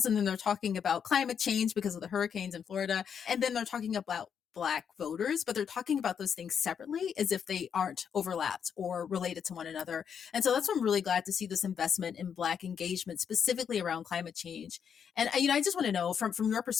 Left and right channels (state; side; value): quieter; right; 7.5 dB